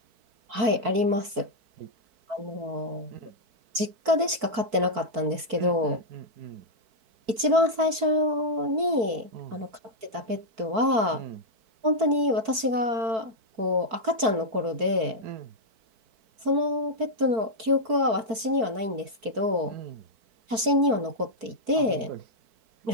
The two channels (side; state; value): left; late; 4.5 ms